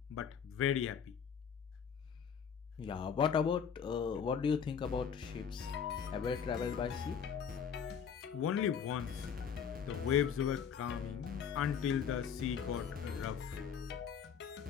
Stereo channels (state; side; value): quieter; right; 7.3 dB